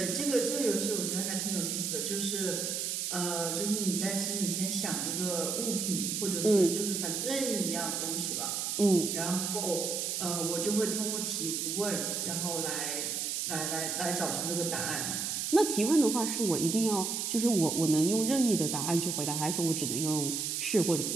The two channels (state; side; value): noise; right; hiss, 1 dB below the sound